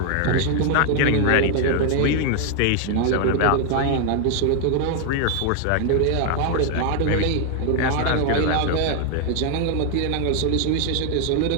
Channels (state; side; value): different; both; correlation 0.00